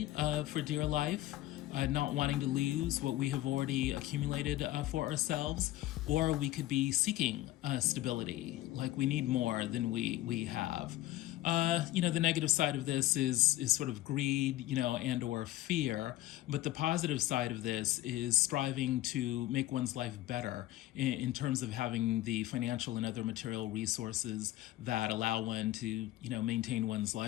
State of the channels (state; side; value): quieter; right; 15.6 dB